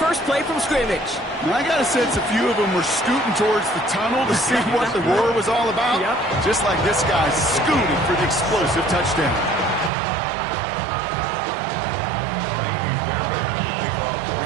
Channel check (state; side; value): drops out; left; at 9.9 s